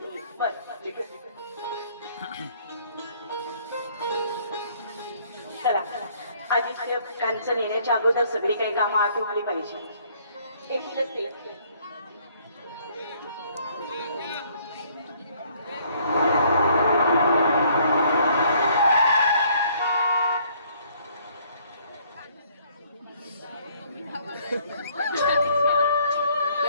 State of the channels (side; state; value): both; inverted; correlation -0.63